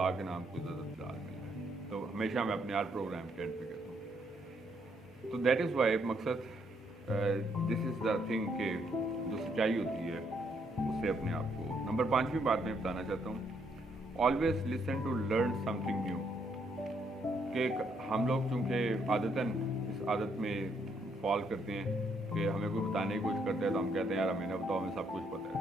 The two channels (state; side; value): normal; both; correlation 0.73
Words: के नाम को ज़्यादा फिलहाल मिल रहा है, तो हमेशा मैं अपने हर प्रोग्राम के एंड पे कहता हूँ। तो दैट इज़ वाई मकसद दिस इज़ द थिंग कि जो सच्चाई होती है उससे अपने आप को। नंबर 5वीं बात मैं बताना चाहता हूँ, always listen to learn something new. कि हम लोग चूँकि आदतन इस आदत में फॉल करते हैं कि हमें कोई बताने की कोशिश करते हैं तो हम कहते हैं यार हमें ना बताओ, हमें सब कुछ पता